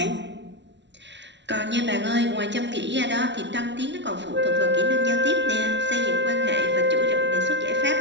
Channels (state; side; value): late; left; 0.51 ms